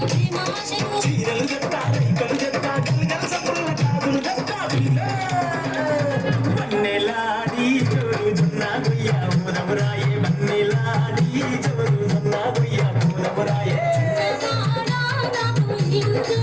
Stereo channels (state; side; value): noise; left; hum, 23 dB below the sound